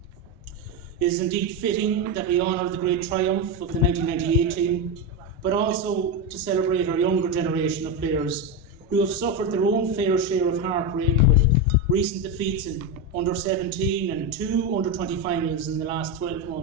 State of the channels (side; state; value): both; normal; correlation 0.12